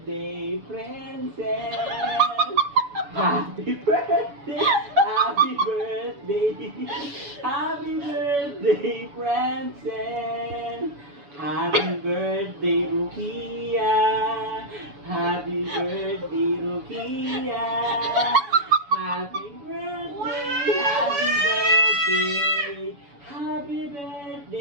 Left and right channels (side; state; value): left; late; 7.0 ms